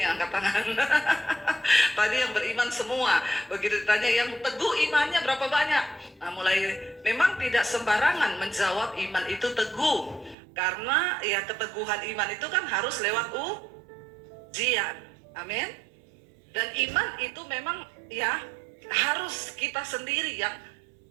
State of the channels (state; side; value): drops out; left; at 10.4 s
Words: angkat tangan. Tadi yang beriman semua, begitu ditanya yang teguh imannya berapa banyak? Nah, memang tidak sembarangan menjawab iman itu teguh, karena ya keteguhan iman itu kan harus lewat ujian. Amin. Dan iman itu memang ya harus kita sendiri yang